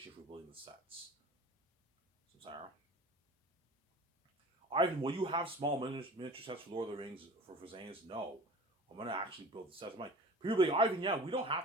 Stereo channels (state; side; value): normal; both; correlation 0.40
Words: for building the sets. So Sarah, Ivan, will you have small miniature sets for Lord of the Rings for Zanus? No, I'm gonna actually build the sets. I'm like, people be like, Ivan, yeah, we don't